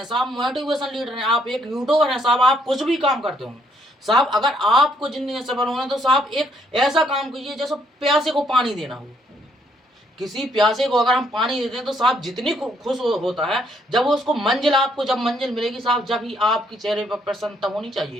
साहब, मोटिवेशन लीडर हैं, आप एक यूट्यूबर हैं साहब, आप कुछ भी काम करते हो साहब, अगर आपको जिंदगी में सफल होना है तो साहब एक ऐसा काम कीजिए जैसे प्यासे को पानी देना हो। किसी प्यासे को अगर हम पानी देते हैं तो साहब जितनी खुश होता है, जब वो उसको मंजिल, आपको जब मंजिल मिलेगी साहब, जब ही आपके चेहरे पर प्रसन्नता होनी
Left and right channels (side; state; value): both; normal; correlation 0.70